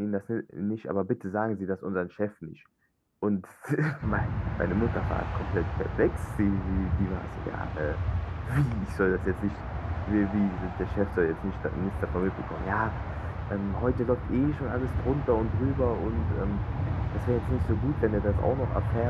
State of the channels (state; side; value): identical; both; correlation 1.00